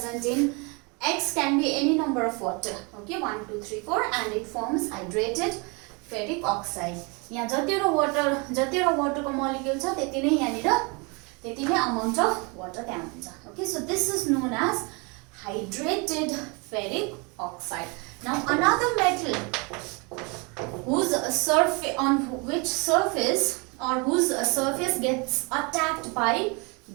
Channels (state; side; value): quieter; left; 30.7 dB